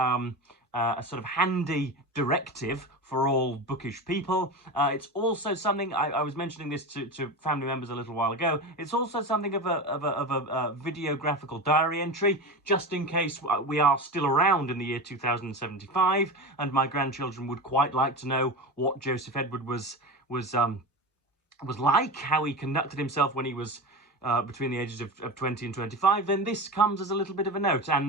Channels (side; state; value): both; normal; correlation 0.25